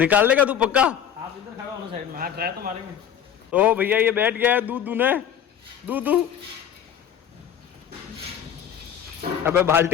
देगा तू पक्का? आप इधर खड़ा होना साइड में। हाँ, ट्राई तो मारेंगे। तो भैया ये बैठ गया है दूध दूने। दूध दू, अबे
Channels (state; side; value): quieter; right; 9.0 dB